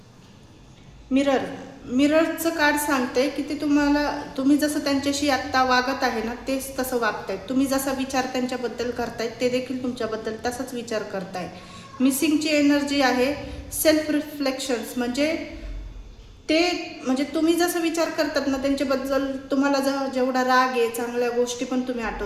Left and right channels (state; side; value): identical; both; correlation 1.00